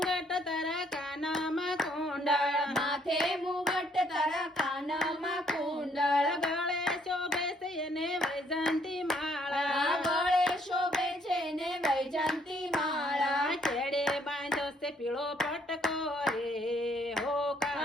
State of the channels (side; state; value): both; normal; correlation 0.67